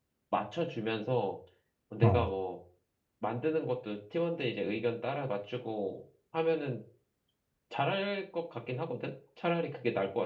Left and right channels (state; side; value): identical; both; correlation 1.00